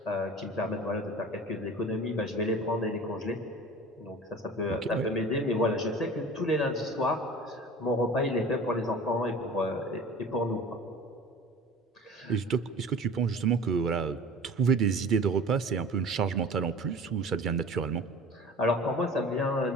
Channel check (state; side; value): normal; both; correlation 0.40